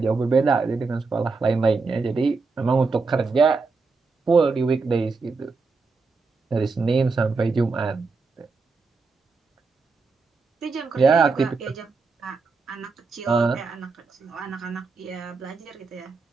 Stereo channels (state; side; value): quieter; left; 4.3 dB